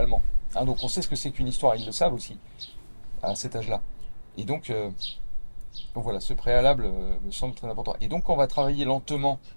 Hein, donc on sait ce que c'est qu'une histoire, ils le savent aussi à cet âge-là. Et donc voilà, ce préalable me semble très important. Et donc, quand on va travailler lentement,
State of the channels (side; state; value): both; inverted; correlation -1.00